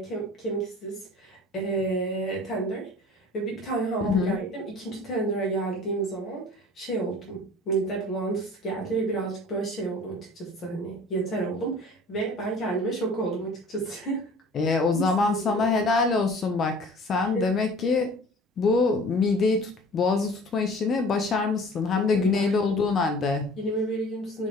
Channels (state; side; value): normal; both; correlation 0.46